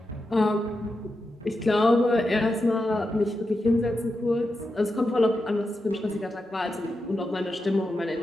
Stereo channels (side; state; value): both; normal; correlation 0.88